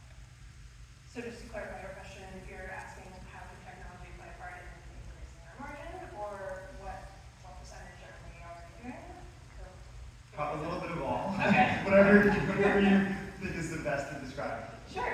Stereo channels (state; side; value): identical; both; correlation 1.00